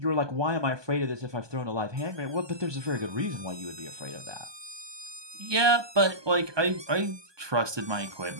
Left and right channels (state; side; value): late; left; 1.2 ms